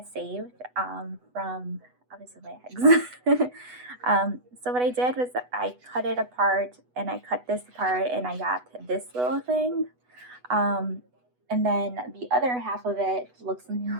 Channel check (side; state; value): left; late; 8.1 ms